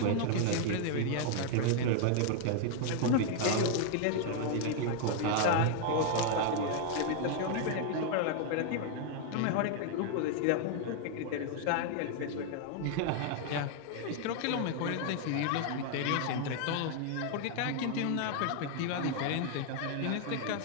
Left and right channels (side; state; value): both; different; correlation 0.00